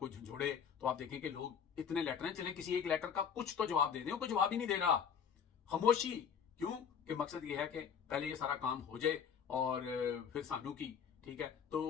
झंझोड़े तो आप देखें कि लोग इतने लेटर हैं, चले किसी एक लेटर का कुछ तो जवाब दे दें। कोई जवाब ही नहीं दे रहा, खामोशी। क्यों? कि मकसद ये है कि पहले ये सारा काम हो जाए और फिर सानू की, ठीक है। तो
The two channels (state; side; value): quieter; right; 7.4 dB